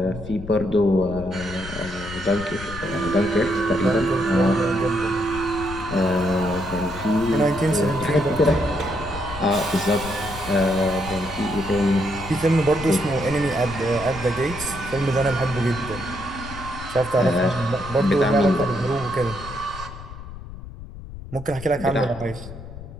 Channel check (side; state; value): left; noise; rumble, 12 dB below the sound